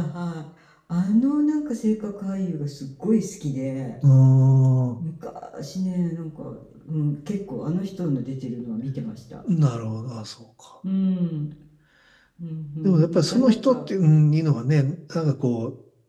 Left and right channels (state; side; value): identical; both; correlation 1.00